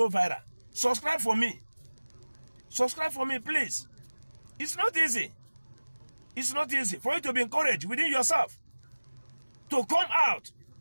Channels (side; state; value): both; inverted; correlation -1.00